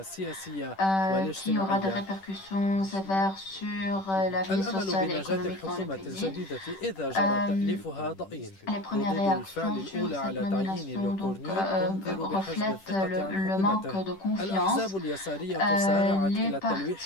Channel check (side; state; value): right; late; 10 ms